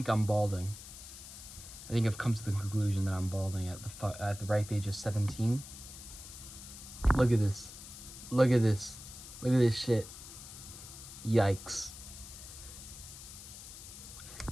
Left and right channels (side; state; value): left; noise; hiss, 14 dB below the sound